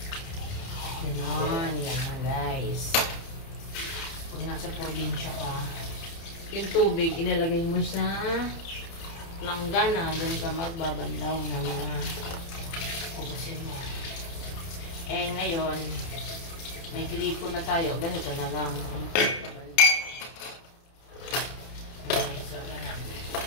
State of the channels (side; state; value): right; late; 30 ms